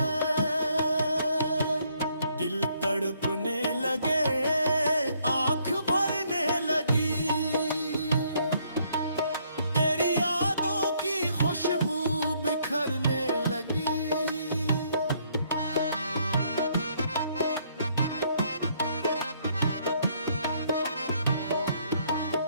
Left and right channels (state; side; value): inverted; both; correlation -0.68